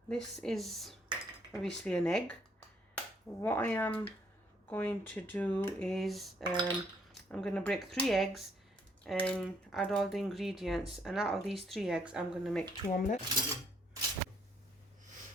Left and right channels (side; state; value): both; normal; correlation 0.68